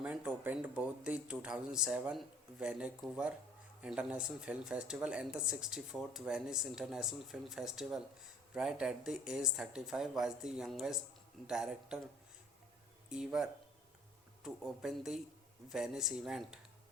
opened both the 2007 Vancouver International Film Festival and the 64th Venice International Film Festival. Right at the age 35, was the youngest director ever to open the Venice event.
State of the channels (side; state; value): both; normal; correlation 0.55